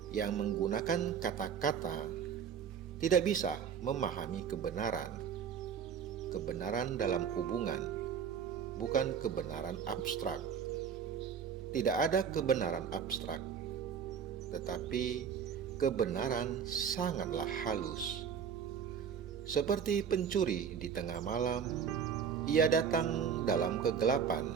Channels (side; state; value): left; quieter; 7.3 dB